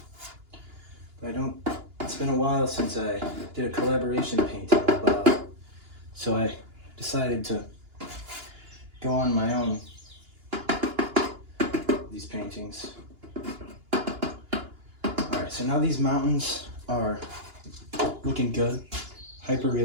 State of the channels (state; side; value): late; left; 2.9 ms